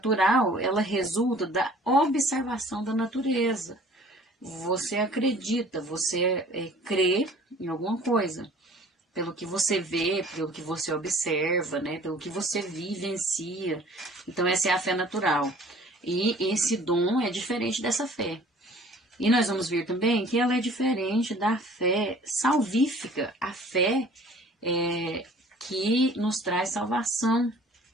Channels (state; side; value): normal; both; correlation 0.51